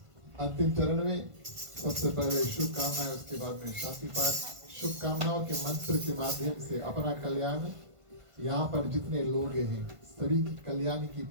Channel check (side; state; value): left; late; 1.5 ms